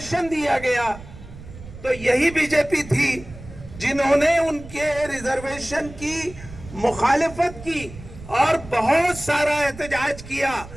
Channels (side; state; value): right; noise; rumble, 16 dB below the sound